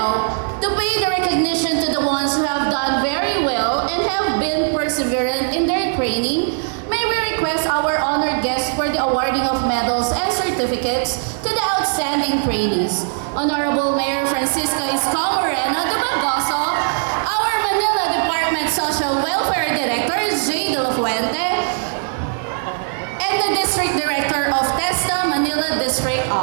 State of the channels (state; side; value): silent; left; digital silence